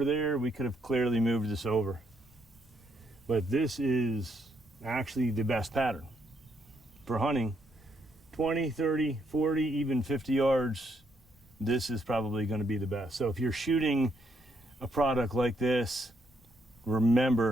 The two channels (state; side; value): normal; both; correlation 0.75